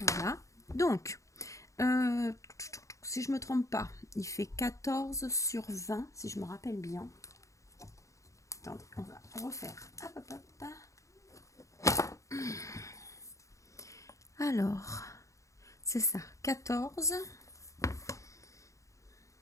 Voilà, donc si je me trompe pas, il fait 14 sur 20 si je me rappelle bien. Attendez, on va refaire. Hop, hop, hop. Alors, c'est ça, 14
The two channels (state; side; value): late; right; 0.15 ms